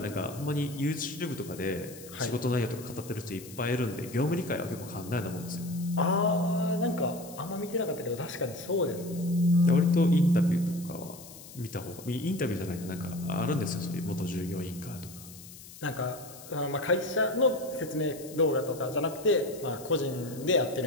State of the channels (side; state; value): left; noise; hiss, 17 dB below the sound